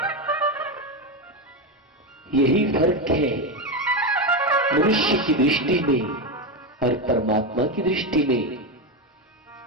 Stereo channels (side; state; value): both; normal; correlation 0.12